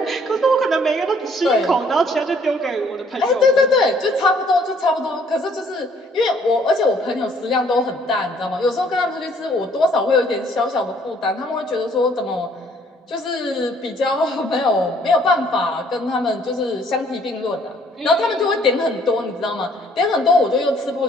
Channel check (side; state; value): both; normal; correlation 0.61